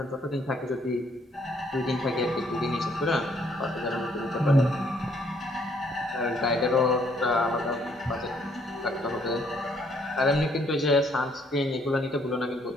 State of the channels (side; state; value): both; normal; correlation 0.67